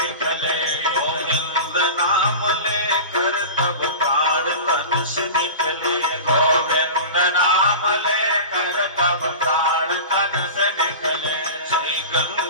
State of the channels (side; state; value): both; inverted; correlation -0.32